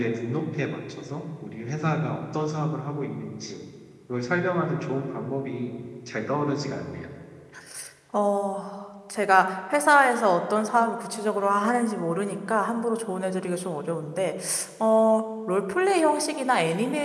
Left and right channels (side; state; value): both; identical; correlation 1.00